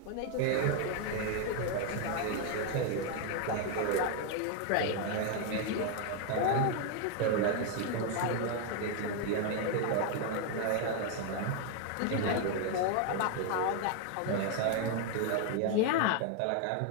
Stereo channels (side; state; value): both; different; correlation 0.01